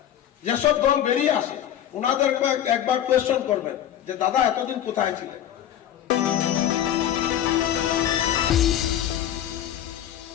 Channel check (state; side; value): quieter; right; 10.8 dB